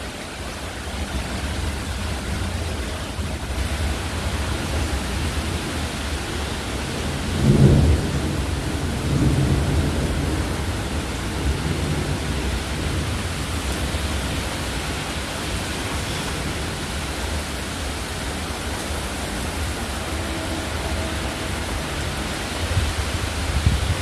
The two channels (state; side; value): identical; both; correlation 1.00